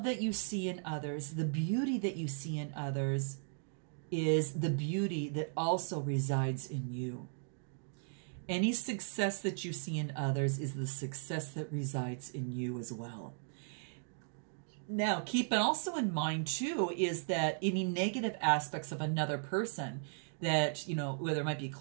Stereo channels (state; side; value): silent; left; digital silence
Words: that you see in others, the beauty that you see in others, is the beauty that also resides in you. Any success that you see in others is the success that resides in you as well. Now, keep also in mind, too, is that any negative aspects of another person that, you know, whether it might be